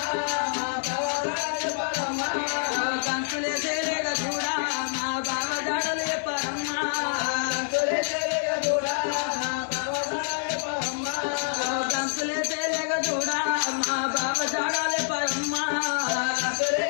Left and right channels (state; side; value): silent; right; 60 dB below the other